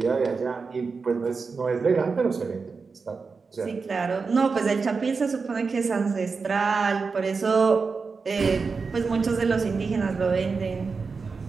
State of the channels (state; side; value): quieter; left; 4.8 dB